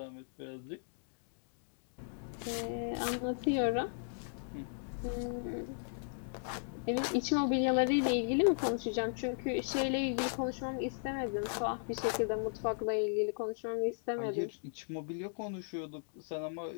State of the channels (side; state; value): right; silent; digital silence